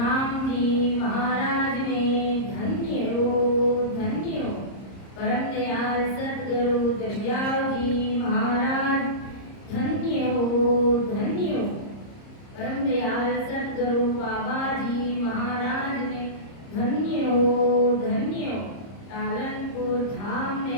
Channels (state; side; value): late; right; 30 ms